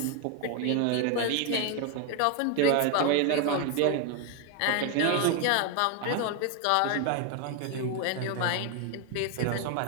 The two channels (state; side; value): different; both; correlation 0.01